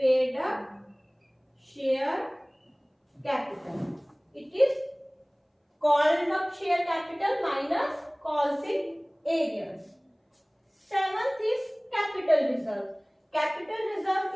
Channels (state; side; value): identical; both; correlation 1.00